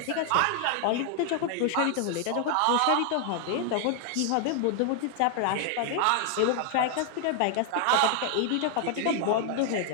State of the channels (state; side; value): different; both; correlation 0.00